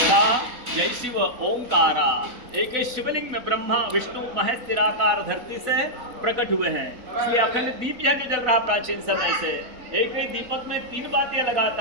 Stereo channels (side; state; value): left; late; 4.1 ms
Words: जय शिव ओंकारा। एक ही शिवलिंग में ब्रह्मा विष्णु महेश निराकार धरती से प्रकट हुए हैं। इसलिए अखंड दीप यह जो जल रहा प्राचीन समय से, एक ही दीपक में 3 बातें